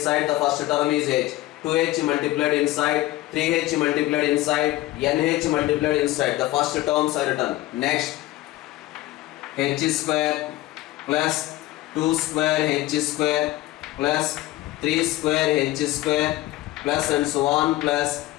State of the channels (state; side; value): quieter; right; 16.9 dB